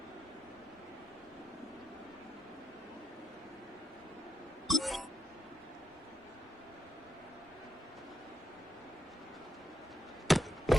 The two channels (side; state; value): both; normal; correlation 0.85